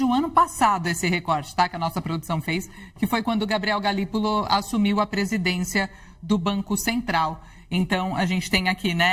o ano passado, esse recorte, tá, que a nossa produção fez, que foi quando o Gabriel Galípolo assumiu a presidência do Banco Central. Então, a gente tem aqui,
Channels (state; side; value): identical; both; correlation 1.00